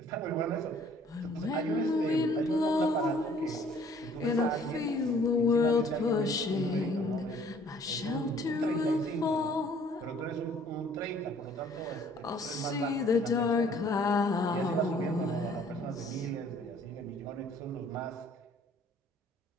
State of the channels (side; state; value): both; normal; correlation 0.57